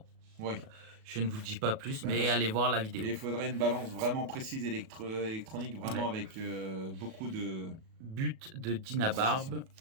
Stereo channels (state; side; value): late; left; 37 ms